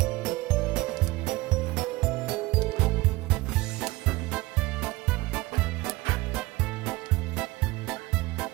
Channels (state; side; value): quieter; left; 20.2 dB